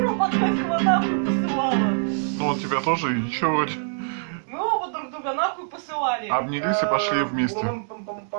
Подгайского нахуй посылала. Ну он тебя тоже, ничего вроде. Мы оба друг друга нахуй посылали. Обнялись и пошли вместе.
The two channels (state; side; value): silent; left; digital silence